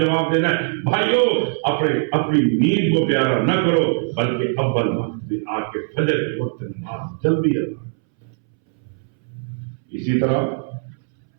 دینا ہے. بھائیو, اپنی نیند کو پیارا نہ کرو, بلکہ اول وقت میں آ کے فجر کے وقت نماز جلدی ادا. اسی طرح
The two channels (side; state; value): left; silent; 65 dB below the other